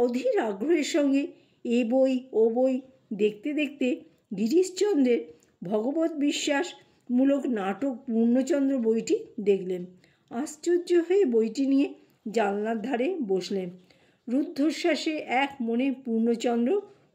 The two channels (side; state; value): both; identical; correlation 1.00